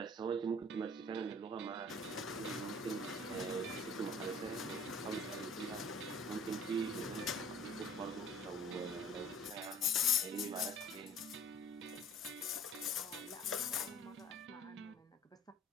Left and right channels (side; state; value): both; normal; correlation 0.50